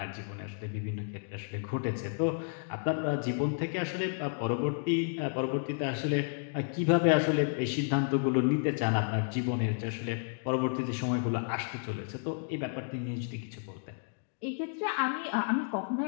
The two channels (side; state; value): right; silent; digital silence